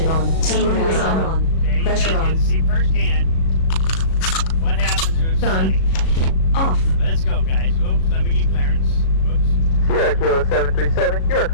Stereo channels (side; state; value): right; late; 37 ms